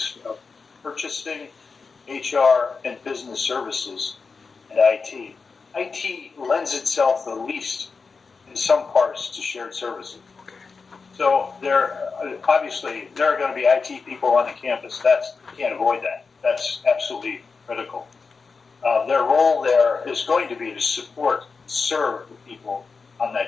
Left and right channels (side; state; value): right; quieter; 4.8 dB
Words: of purchasing, HR, and business services, and IT lends itself the least in some parts to shared services. So obviously there are going to be IT people on the campus. You can't avoid that. That's absolutely critical. Their role there is going to be to serve the people on